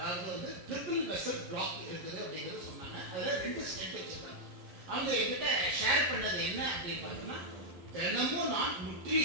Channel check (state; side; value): late; left; 11 ms